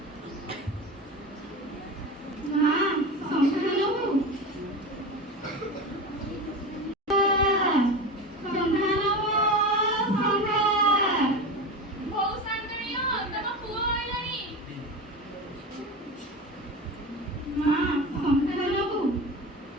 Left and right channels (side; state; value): both; normal; correlation 0.26